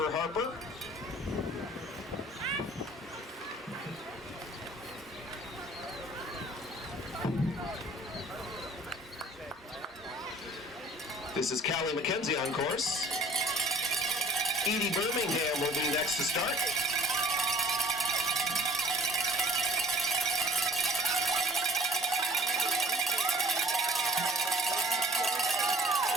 Harper. This is Callie McKenzie on course. Edie Birmingham will be next to start.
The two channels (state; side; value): normal; both; correlation 0.53